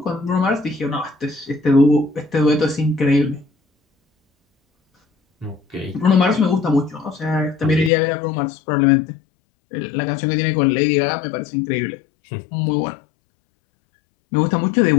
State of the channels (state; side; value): drops out; right; at 7.9 s